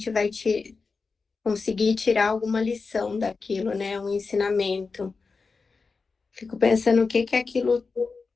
vai conseguir tirar alguma lição daquilo, né, um ensinamento. Fico pensando o que aquilo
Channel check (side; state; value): right; quieter; 4.5 dB